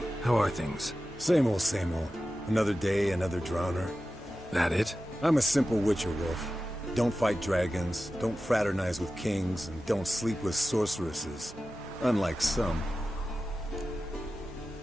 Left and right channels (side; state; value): both; normal; correlation 0.94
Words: How are things? Same old, same old. Another day, another drowner. That it? I'm a simple witcher, Wolf. Don't fight dragons, don't fraternize with kings, and don't sleep with sorceresses. Unlike some.